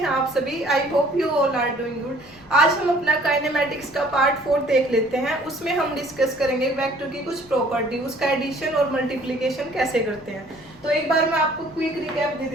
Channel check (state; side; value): noise; left; rumble, 26 dB below the sound